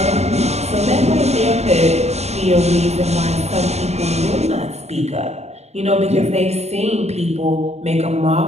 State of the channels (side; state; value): left; late; 0.31 ms